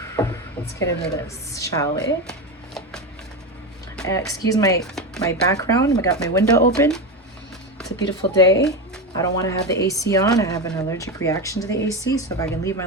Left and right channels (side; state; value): both; normal; correlation 0.17